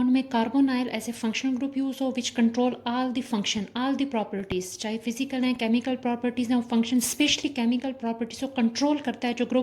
में carbonyl as a functional group use हो which control all the function, all the properties, चाहे फिजिकल हैं, केमिकल प्रॉपर्टीज़ हैं, फंक्शन स्पेशली केमिकल प्रॉपर्टीज़ को कंट्रोल करता है जो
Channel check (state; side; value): identical; both; correlation 1.00